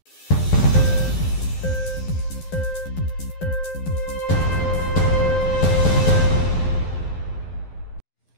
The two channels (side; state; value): right; late; 12 ms